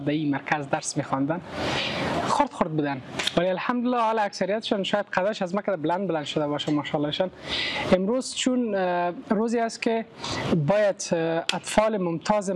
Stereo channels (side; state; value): both; identical; correlation 1.00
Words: این مرکز درس می‌خواندن. خرد بودن، ولی الحمدلله حالا اکثریتشان شاید قدش از مکه بلند شده باشه ماشاءاللهشان. امروز چون روزی است که باید اطفال ممتاز